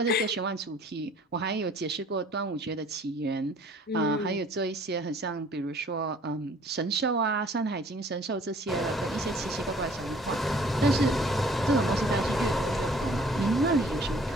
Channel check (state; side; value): normal; both; correlation 0.54